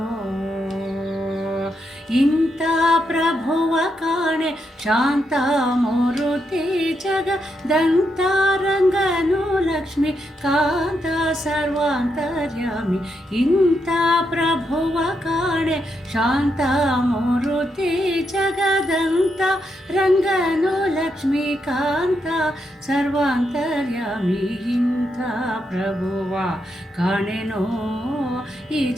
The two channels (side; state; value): both; normal; correlation 0.82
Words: ಇಂಥ ಪ್ರಭುವ ಕಾಣೆ ಶಾಂತ ಮೂರುತಿ ಜಗದಂತ ರಂಗನು ಲಕ್ಷ್ಮಿ ಕಾಂತ ಸರ್ವಾಂತರ್ಯಾಮಿ, ಇಂಥ ಪ್ರಭುವ ಕಾಣೆ ಶಾಂತ ಮೂರುತಿ ಜಗದಂತ ರಂಗನು ಲಕ್ಷ್ಮಿ ಕಾಂತ ಸರ್ವಾಂತರ್ಯಾಮಿ, ಇಂಥ ಪ್ರಭುವ ಕಾಣೆನೋ ಈ